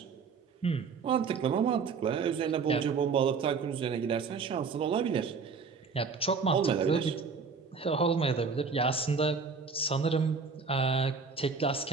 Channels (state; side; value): quieter; left; 5.2 dB